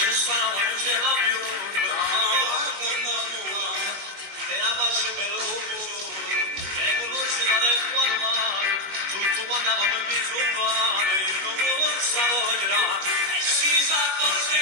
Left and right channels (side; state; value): left; late; 21 ms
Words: stavo non ce va più, e la faccio per l'uomo, che non si va del quadro mare, tutto quando avevamo il viso male, io non lo stavo a girare, e si sa forse